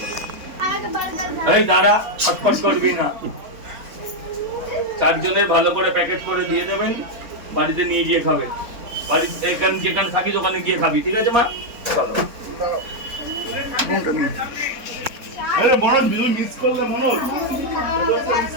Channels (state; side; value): late; left; 3.9 ms